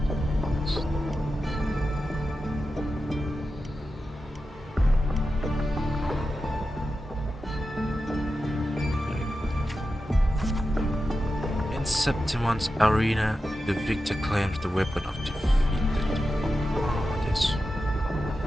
in Septimon's arena, the victor claims the weapon of defeated.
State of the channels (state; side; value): normal; both; correlation 0.91